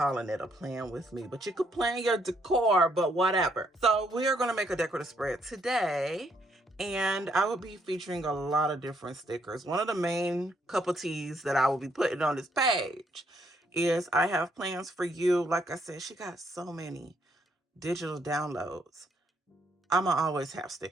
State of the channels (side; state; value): both; normal; correlation 0.72